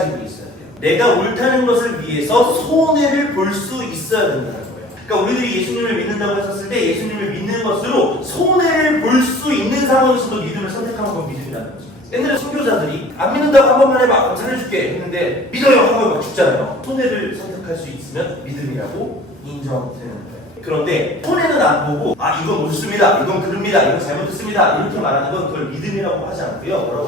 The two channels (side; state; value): both; normal; correlation 0.47